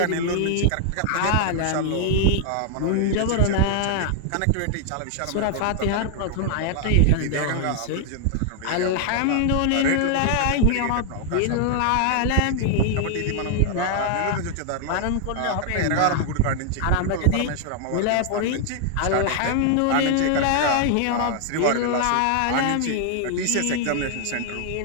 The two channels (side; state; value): both; different; correlation 0.00